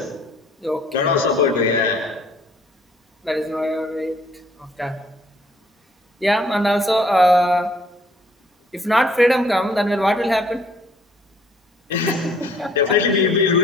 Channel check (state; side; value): normal; both; correlation 0.61